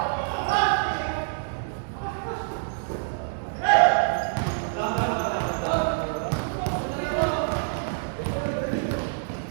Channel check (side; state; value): left; silent; 61 dB below the other